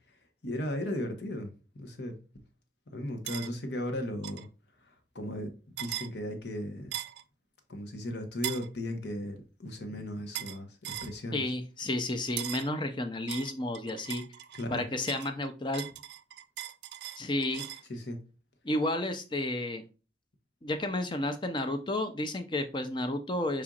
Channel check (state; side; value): normal; both; correlation 0.50